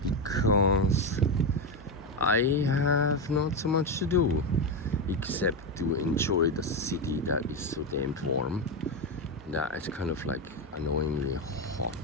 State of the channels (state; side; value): normal; both; correlation 0.11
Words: Because I have not so much to do except to enjoy the city that is so damn warm. That it's kind of like annoyingly hot